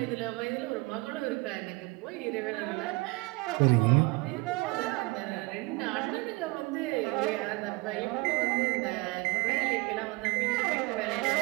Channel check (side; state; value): left; quieter; 25.4 dB